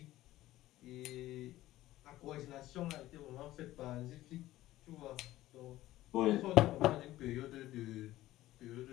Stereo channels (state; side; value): quieter; right; 15.6 dB